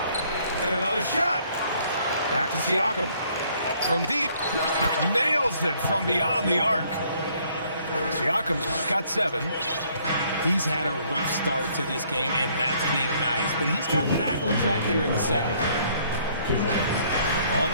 And another shot. Back to Siakam. From deep. Nails it from beyond the arc. Siakam's got 7. He's had a rough start to this game, and that's being nice. But he's gotten back on track here in the second. On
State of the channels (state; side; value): inverted; both; correlation -0.64